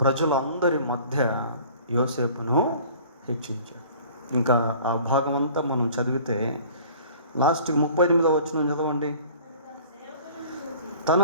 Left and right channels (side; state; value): both; inverted; correlation -0.47